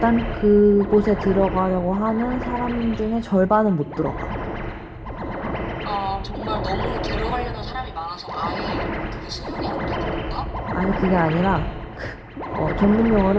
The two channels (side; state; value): both; identical; correlation 1.00